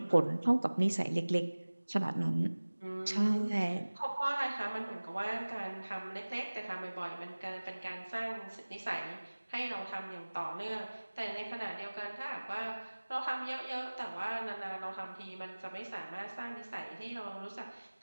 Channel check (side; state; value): both; inverted; correlation -1.00